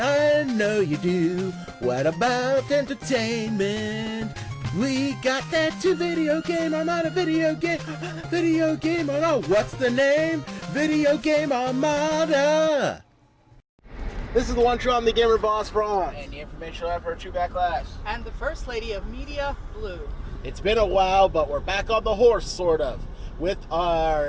I know you do. What about entertainment? We got that to video game. I'm on a video game. Video game. Oh no, what's the name? Video Game Armada. This is the one true I'm the gamer boss Bronze. And the informational effort True Backlash. And the First Lady of Media, Blue. It's been a while, but we're back on the horse, sort of, with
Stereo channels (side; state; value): both; identical; correlation 1.00